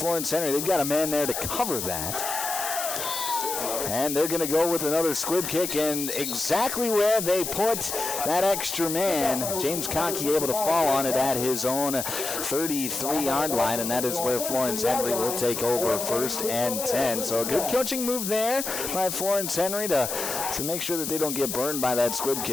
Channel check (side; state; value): left; noise; hiss, 4 dB below the sound